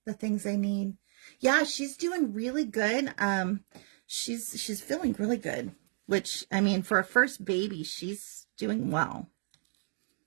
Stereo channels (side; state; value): left; silent; 56 dB below the other